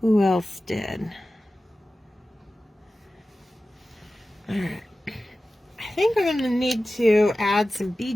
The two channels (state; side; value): normal; both; correlation 0.95